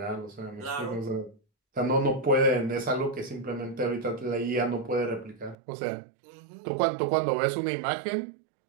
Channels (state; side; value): drops out; left; at 5.6 s